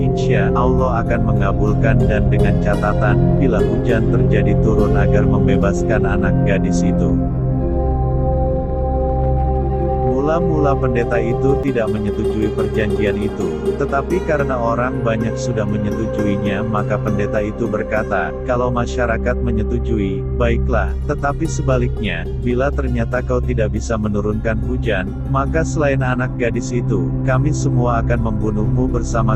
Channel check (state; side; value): identical; both; correlation 1.00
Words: Allah akan mengabulkan dan dengan catatan, bila hujan terjadi turun agar membebaskan anak gadis itu." Mula-mula pendeta itu tidak menyetujui perjanjian itu, tetapi karena orang banyak sudah menyetujuinya maka pendeta itu berkata, "Kalau masyarakat menyetujui, baiklah, tetapi sebaliknya, bila ternyata kau tidak bisa menurunkan hujan, maka selain anak gadis itu, kami semua akan membunuhmu bersama